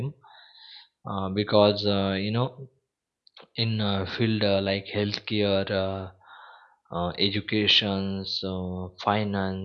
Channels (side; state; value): both; identical; correlation 1.00